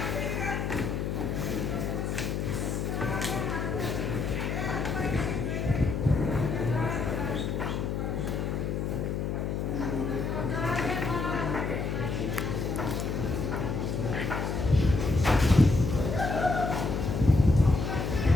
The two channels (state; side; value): noise; left; hum, 1 dB below the sound